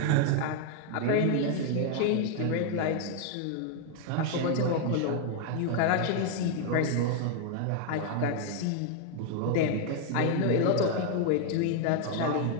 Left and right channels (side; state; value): both; different; correlation 0.00